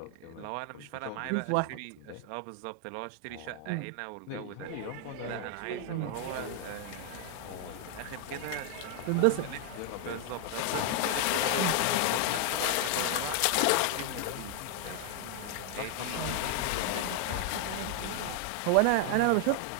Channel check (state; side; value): different; both; correlation 0.00